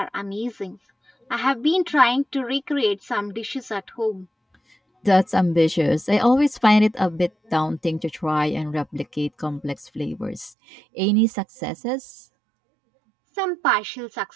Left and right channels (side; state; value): left; drops out; at 10.6 s